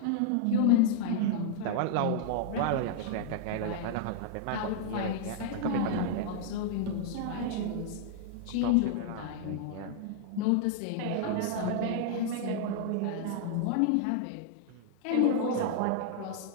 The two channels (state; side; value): different; both; correlation -0.01